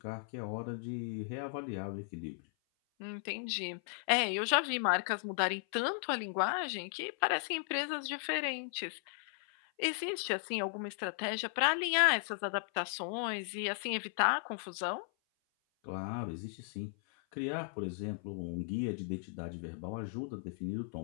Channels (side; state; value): right; silent; 54 dB below the other